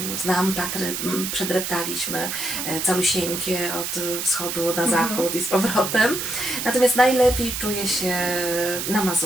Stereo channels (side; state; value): right; noise; hiss, 4 dB below the sound